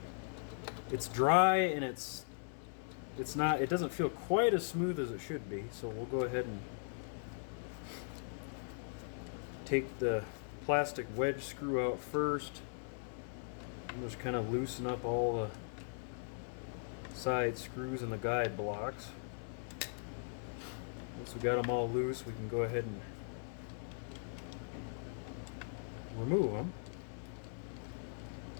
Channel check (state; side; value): silent; right; 52 dB below the other